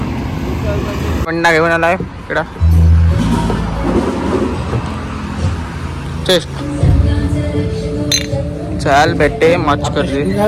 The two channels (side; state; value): both; identical; correlation 1.00